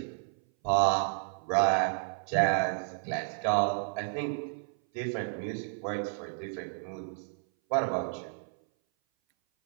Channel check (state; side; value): silent; left; 57 dB below the other